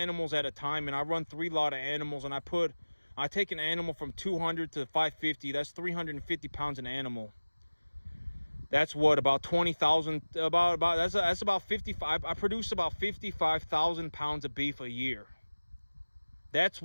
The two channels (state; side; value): inverted; both; correlation -1.00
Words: at a time, and I run 3 lot of animals, and I take an animal from 200 to 550, that's 350 pounds an animal. That's what, about 20,000, that's about 55. I produce about 55,000 pounds of beef a year. That's